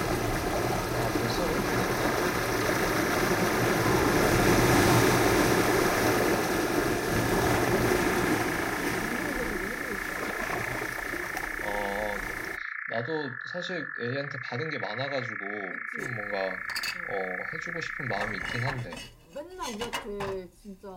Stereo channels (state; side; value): identical; both; correlation 1.00